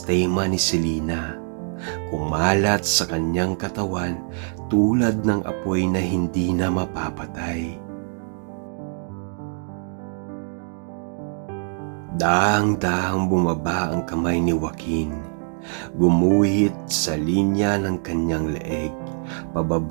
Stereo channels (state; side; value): silent; left; 57 dB below the other